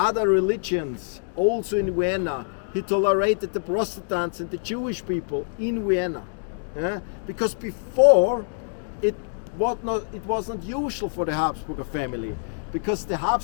religions also in Vienna. He tolerated the Protestants and the Jewish people in Vienna. Because before it was not usual for the Habsburger family, because the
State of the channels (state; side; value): silent; right; digital silence